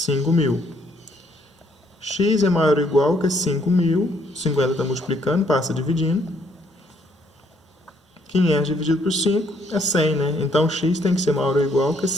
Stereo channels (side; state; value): both; normal; correlation 0.68